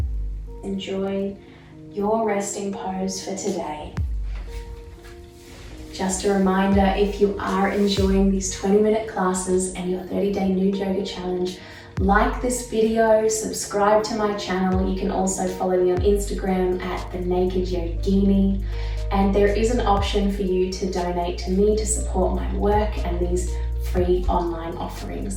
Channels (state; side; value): identical; both; correlation 1.00